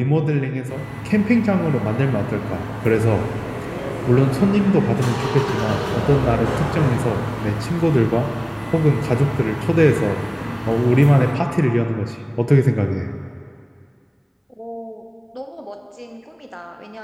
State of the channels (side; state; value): both; identical; correlation 1.00